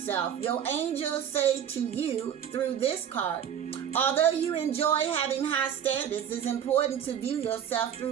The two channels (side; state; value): left; quieter; 9.1 dB